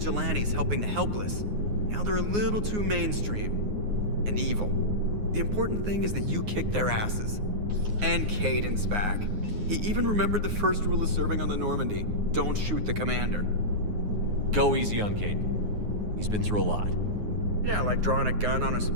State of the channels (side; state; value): left; late; 9.6 ms